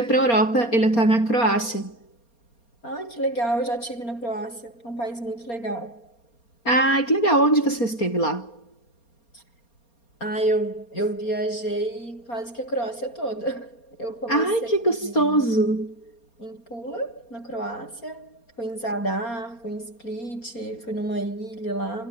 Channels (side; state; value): right; late; 4.3 ms